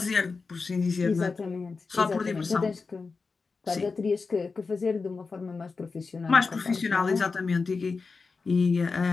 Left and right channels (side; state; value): right; quieter; 4.5 dB